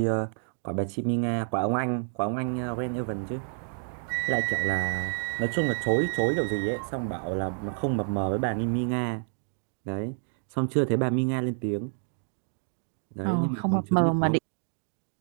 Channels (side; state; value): left; silent; 59 dB below the other